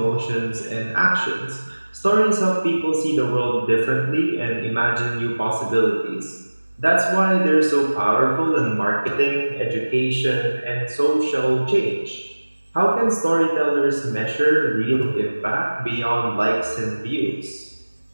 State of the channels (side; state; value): both; inverted; correlation -1.00